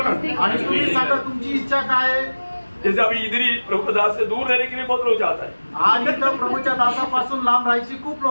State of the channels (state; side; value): inverted; both; correlation -1.00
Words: ना। आणि तुम्ही सांगा तुमची इच्छा काय आहे? जैसे अभी इधर ही प्रभु के दास से दूर रहने के लिए बहुत लोग चाहता है, आणि तर प्रभूच्या दासापासून लांब राहायची खूप